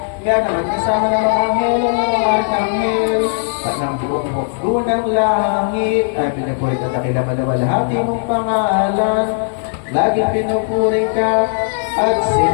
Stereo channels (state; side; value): silent; right; digital silence